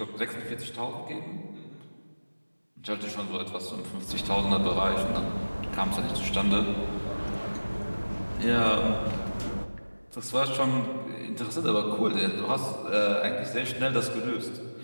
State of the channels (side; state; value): both; inverted; correlation -1.00